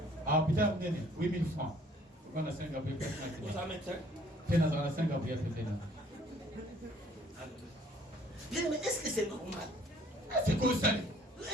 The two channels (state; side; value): normal; both; correlation 0.58